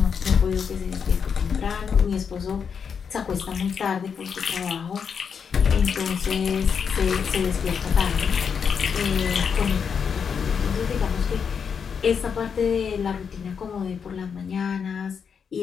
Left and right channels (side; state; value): right; quieter; 6.6 dB